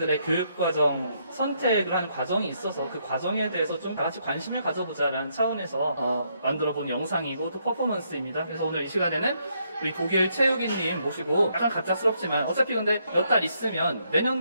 교육과정 선택을 하는 과정이 있어서 그 과정에 대해서 좀 같이 관심을 가져보자라는 차원에서 만들어본 영상이고 또 퍼포먼스입니다. 그래서 오늘 이 시간에는 우리 독일 체육인님 모시고, 약간 갑작스럽지만 어차피 근데 몇 달 있으면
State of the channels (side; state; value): both; inverted; correlation -0.74